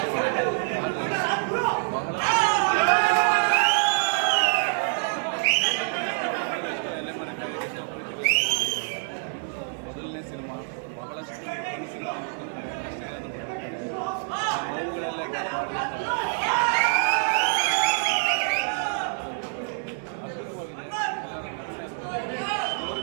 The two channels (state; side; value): silent; left; 61 dB below the other